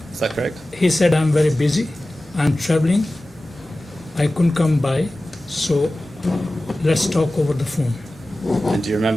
is that correct? He said, I'm very busy, I'm traveling, I couldn't come by, so let's talk over the phone. And do you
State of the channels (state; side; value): normal; both; correlation 0.96